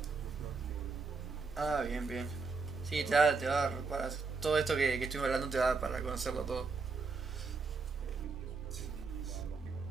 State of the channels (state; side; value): quieter; left; 4.5 dB